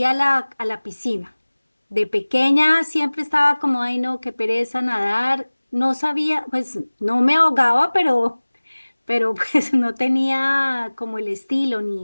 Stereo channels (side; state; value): both; inverted; correlation -1.00